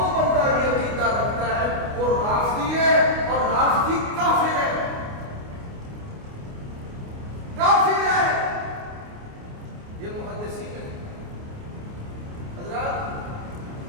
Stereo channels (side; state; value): left; late; 29 ms